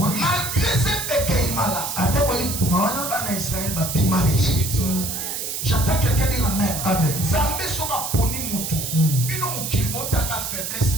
ces pécaïmala, Israël va bima l'Égypte. J'attends quelqu'un dire amen. Zambé sera poni mutu. Bino mukilibota ka faiblesse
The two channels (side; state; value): right; noise; hiss, 4 dB below the sound